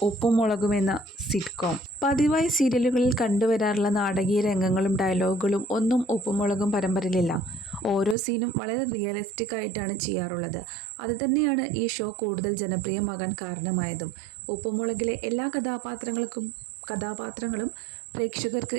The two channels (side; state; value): left; drops out; at 8.2 s